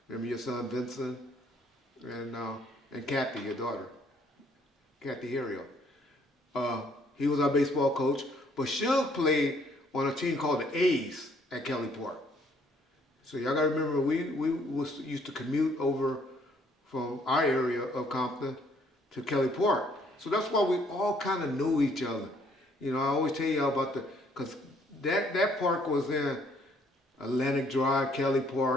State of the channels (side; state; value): both; normal; correlation 0.65